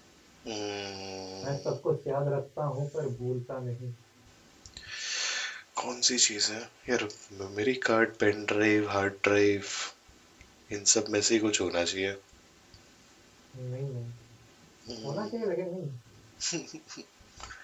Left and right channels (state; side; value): identical; both; correlation 1.00